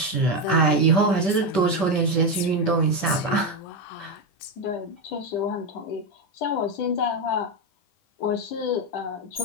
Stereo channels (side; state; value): right; late; 10 ms